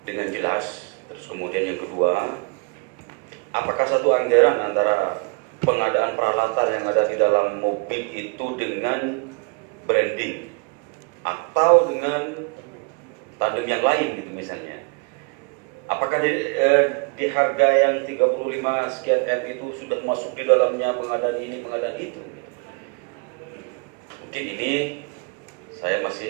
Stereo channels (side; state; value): left; quieter; 32.2 dB